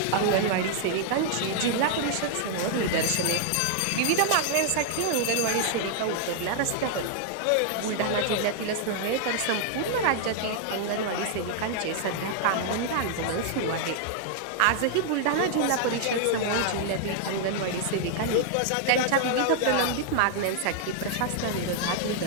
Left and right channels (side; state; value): both; different; correlation 0.00